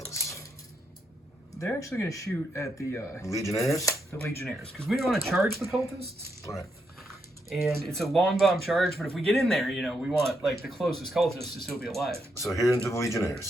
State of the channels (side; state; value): both; normal; correlation 0.80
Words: They're actually going to shoot at the Legionnaires? Legionnaires, because we don't want to charge the cultists. All right. And it's a long bomb charge, but if we get in there, you know, we want like the closest cultist to still be alive. So here into the